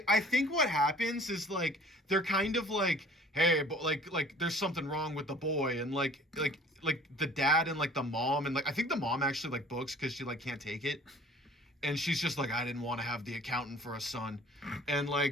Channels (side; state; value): both; normal; correlation 0.50